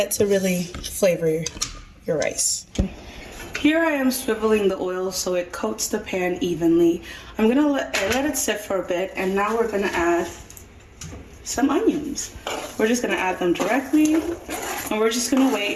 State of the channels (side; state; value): both; identical; correlation 1.00